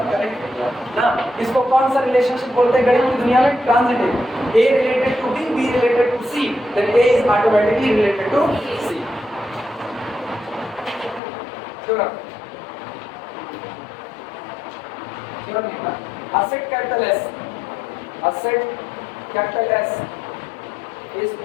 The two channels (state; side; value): drops out; right; at 11.2 s